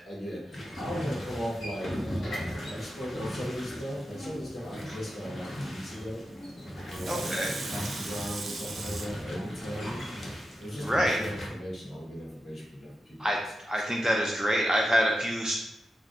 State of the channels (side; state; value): both; normal; correlation 0.89